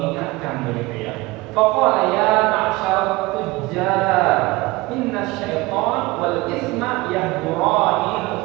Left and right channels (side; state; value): left; quieter; 21.3 dB